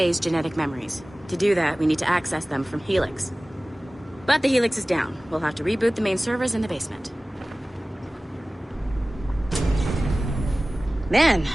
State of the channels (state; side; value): normal; both; correlation 0.98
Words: genetic memories. To do that, we need to access them from Helix. But the Helix is down. We'll have to reboot the main servers in the basement. Man,